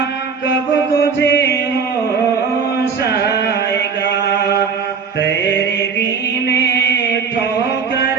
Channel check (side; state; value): left; quieter; 5.9 dB